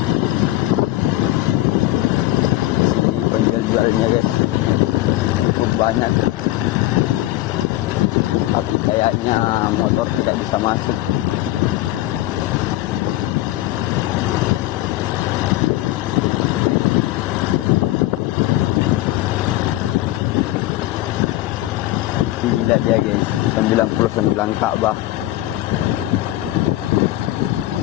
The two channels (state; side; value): quieter; right; 16.3 dB